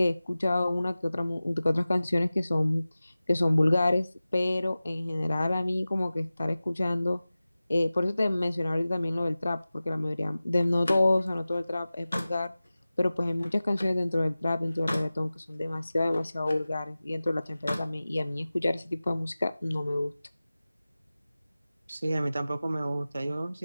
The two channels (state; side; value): inverted; both; correlation -0.96